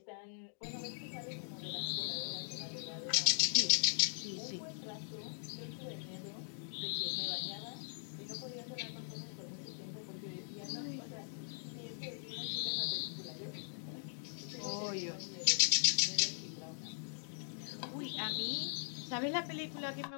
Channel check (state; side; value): silent; right; digital silence